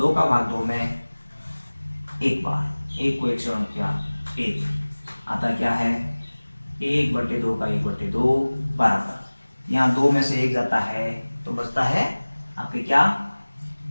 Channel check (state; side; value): inverted; both; correlation -1.00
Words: का भाग 2 में 1 बार, 1 को 1 से गुणा किया 1, आता क्या है 1/2 का 1/2 बराबर, यहाँ 2 में से 1 जाता है तो बचता है आपके क्या